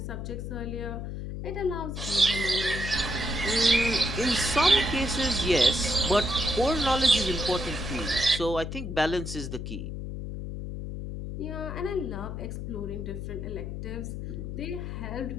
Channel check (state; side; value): noise; left; hum, 6 dB below the sound